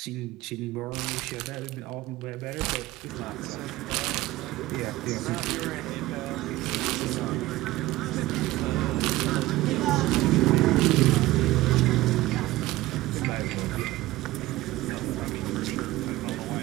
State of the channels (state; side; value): quieter; left; 17.4 dB